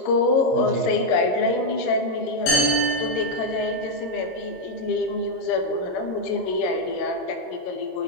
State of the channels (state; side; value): late; right; 22 ms